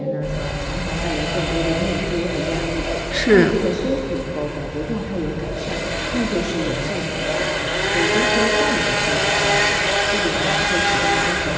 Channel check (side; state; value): both; identical; correlation 1.00